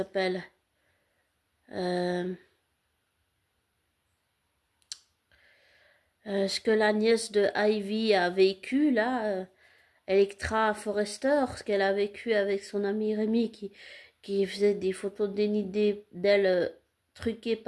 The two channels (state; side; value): identical; both; correlation 1.00